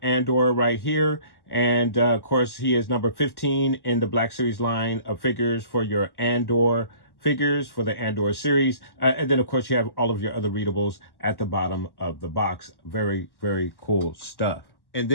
Andor right here. And, of course, he is number 15 in the Black Series line of figures for your Andor figures for the Andor series. And then, of course, you have all of your other readables at the bottom of the box. Very, very cool stuff. And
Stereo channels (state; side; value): late; right; 1.1 ms